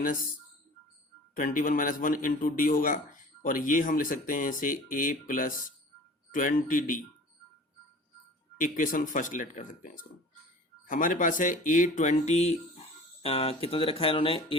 1 into D होगा, और ये हम लिख सकते हैं इसे a plus 20d। Equation first let कर सकते हैं इसको। हमारे पास है A20 कितना दे रखा है इन्होंने,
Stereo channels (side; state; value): both; normal; correlation 0.43